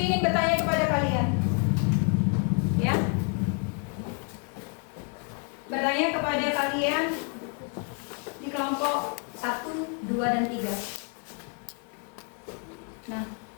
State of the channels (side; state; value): right; quieter; 37.0 dB